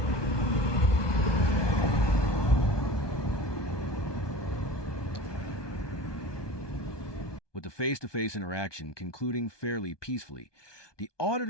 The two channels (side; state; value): right; late; 1.2 ms